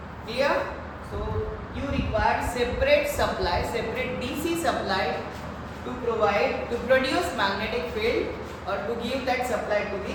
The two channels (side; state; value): both; identical; correlation 1.00